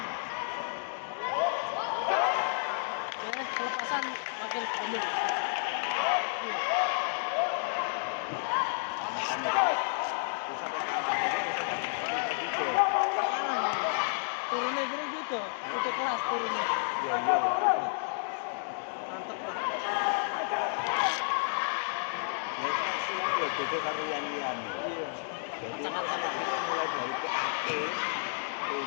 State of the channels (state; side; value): silent; right; digital silence